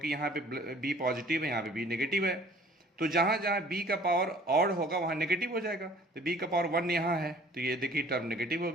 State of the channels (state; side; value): normal; both; correlation 0.52